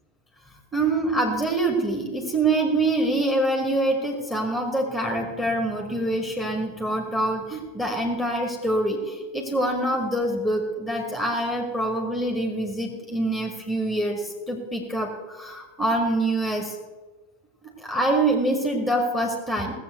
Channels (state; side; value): normal; both; correlation 0.52